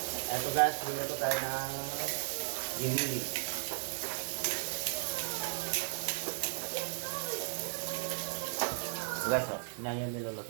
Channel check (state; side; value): silent; left; digital silence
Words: Eto guys, nuluto tayo ng ginili. Guys, yan yung